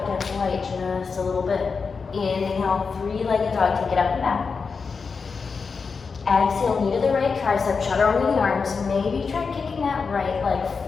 gets light just a little bit. Inhale, three-legged dog, take it up and back. Exhale, knee to the right tricep, shudder over the arms. Maybe try kicking that right leg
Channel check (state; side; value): quieter; right; 5.1 dB